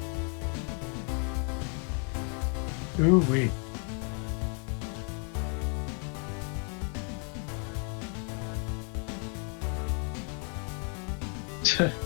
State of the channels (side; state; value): right; quieter; 39.8 dB